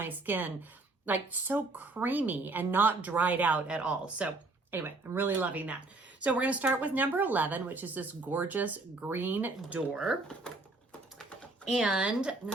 skin like so creamy and not dried out at all. So anyway, I'm really loving that. So we're gonna start with number 11, which is this gorgeous green door. And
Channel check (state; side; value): quieter; left; 3.3 dB